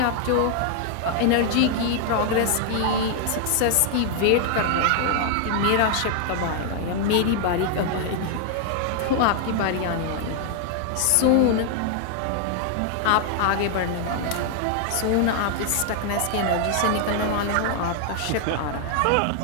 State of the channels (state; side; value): different; both; correlation 0.00